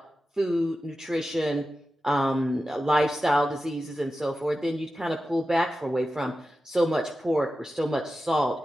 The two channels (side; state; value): both; normal; correlation 0.93